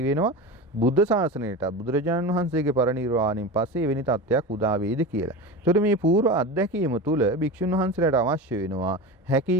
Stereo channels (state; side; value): normal; both; correlation 0.27